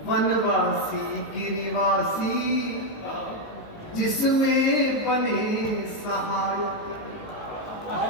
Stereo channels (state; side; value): late; right; 19 ms